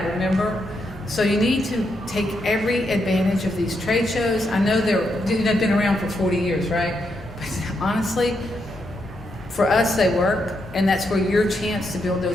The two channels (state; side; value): normal; both; correlation 0.81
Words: remember? So you need to take every advantage of these trade shows. I know they've been around for 40 years, right? But honestly, for us, they work, and that's where your chance to build